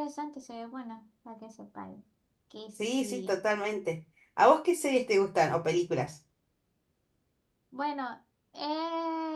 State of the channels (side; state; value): both; identical; correlation 1.00